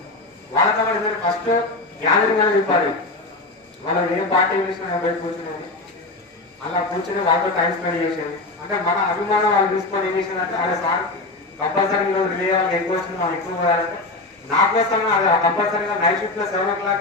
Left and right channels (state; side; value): quieter; right; 3.1 dB